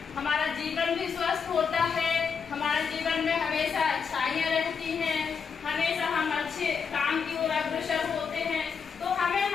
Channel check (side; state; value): right; quieter; 6.1 dB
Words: हमारा जीवन भी स्वस्थ होता है, हमारे जीवन में हमेशा अच्छाइयाँ रहती हैं, हमेशा हम अच्छे काम की ओर अग्रसर होते हैं। तो हमें